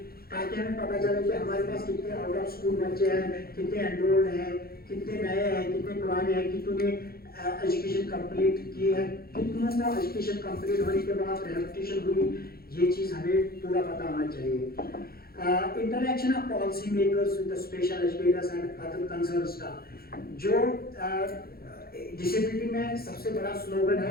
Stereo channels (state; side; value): late; right; 0.44 ms